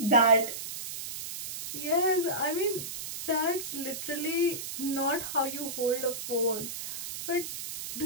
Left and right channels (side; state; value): right; noise; hiss, 7 dB below the sound